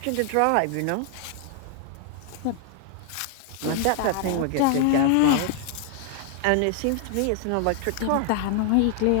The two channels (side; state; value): both; different; correlation 0.00